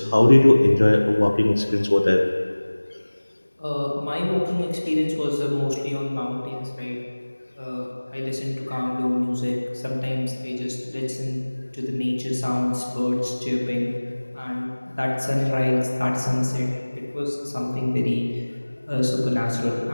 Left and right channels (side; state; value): both; inverted; correlation -1.00